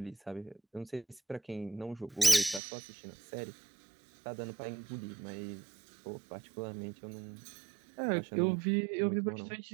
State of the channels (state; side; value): drops out; left; at 2.6 s